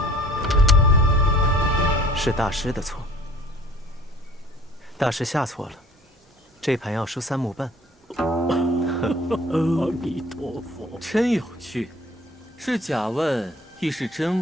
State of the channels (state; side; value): normal; both; correlation 0.50